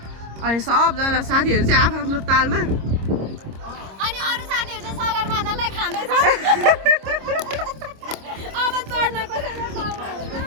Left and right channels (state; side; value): late; left; 26 ms